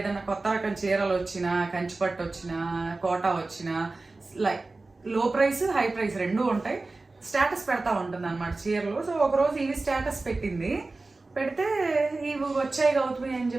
కొత్త రకం చీరలు వచ్చినా, కంచిపట్టు వచ్చినా, కోటా వచ్చినా, లైక్ లో ప్రైస్ హై ప్రైస్ రెండూ ఉంటాయి, స్టేటస్ పెడతా ఉంటుంది అనమాట చీరలు. సో ఒకరోజు ఇవి స్టేటస్ పెట్టింది. పెడితే ఇవి వచ్చాయి గౌతమి అని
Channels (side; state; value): left; quieter; 3.4 dB